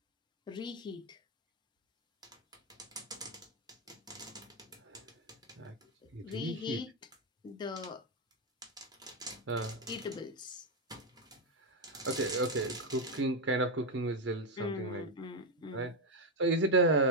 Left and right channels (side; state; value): both; normal; correlation 0.05